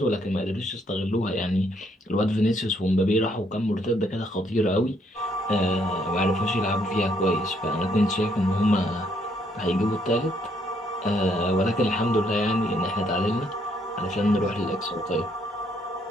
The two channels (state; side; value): normal; both; correlation 0.71